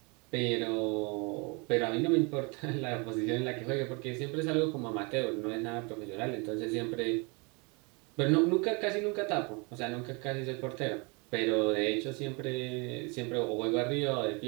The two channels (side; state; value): left; quieter; 30.8 dB